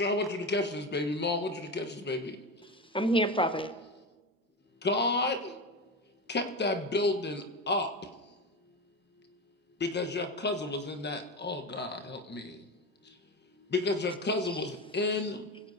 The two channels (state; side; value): normal; both; correlation 0.21